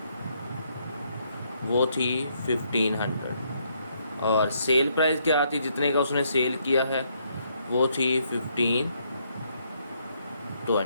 वो थी 1500 और सेल प्राइस क्या थी, जितने का उसने सेल किया है वो थी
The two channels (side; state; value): both; inverted; correlation -0.73